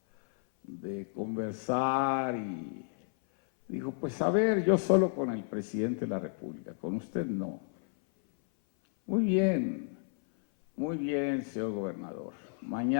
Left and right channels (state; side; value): silent; right; 56 dB below the other